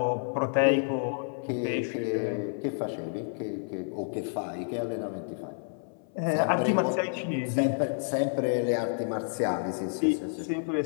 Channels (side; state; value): right; silent; 58 dB below the other